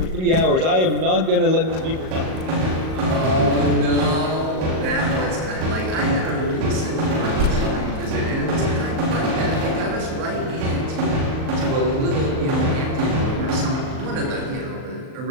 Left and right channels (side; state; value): left; late; 38 ms